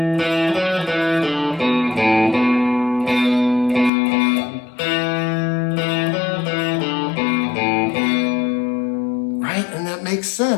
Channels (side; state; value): right; drops out; at 3.9 s